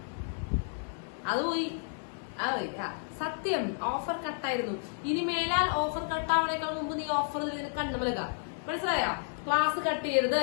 അത് പോയി. സത്യം, ഓഫർ കട്ടായിരുന്നു. ഇനി മേലാൽ ഓഫർ കട്ടാവണേക്കാൾ മുമ്പ് നീ ഓഫർ കണ്ടുമലക. മനസ്സിലായോ? ക്ലാസ് കട്ട് ചെയ്യരുത്,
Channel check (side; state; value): right; silent; digital silence